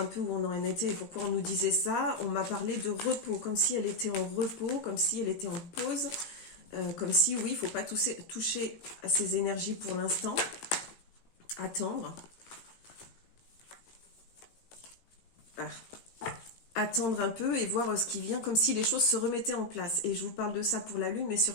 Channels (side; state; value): right; late; 18 ms